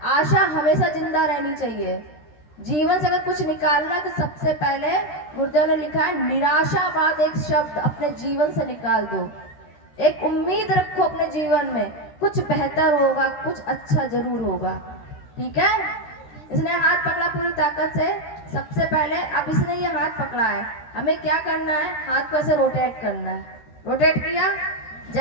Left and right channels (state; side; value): late; right; 13 ms